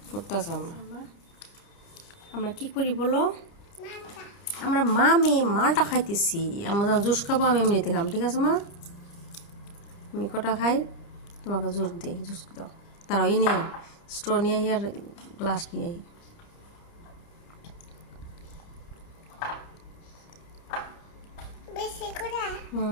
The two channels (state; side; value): late; right; 29 ms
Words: করতেছে আমরা কি করি বলো আমরা মালটা খাইতেছি আমরা জুস খাবো আমি এমনিতে খাম ঠিক আছে মা আমি কটা খাই তোমাকে জুস দিই জুস দাও তারাও নেই স্ট্র নিয়ে আর গ্লাস নিয়ে